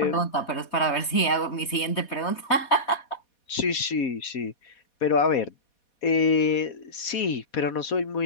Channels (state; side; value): late; right; 4.2 ms